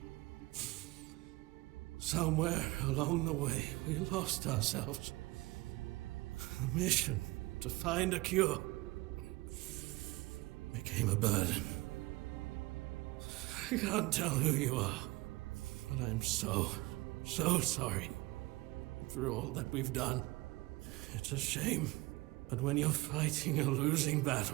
Somewhere along the way, we lost ourselves. The mission to find a cure became a burden. I can't tell who you are, but I'm so sorry for all that we've done. It's a shame, but when you're fighting a losing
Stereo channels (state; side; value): quieter; left; 21.3 dB